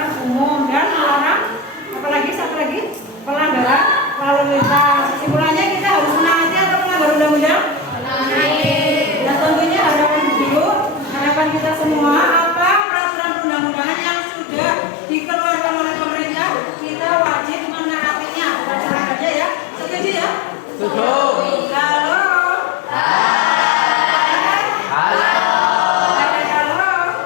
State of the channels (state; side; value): drops out; right; at 12.9 s